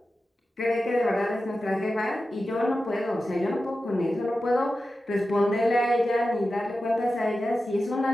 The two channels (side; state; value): both; normal; correlation 0.93